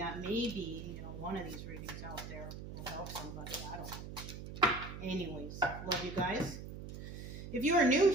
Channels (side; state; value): right; noise; hum, 9 dB below the sound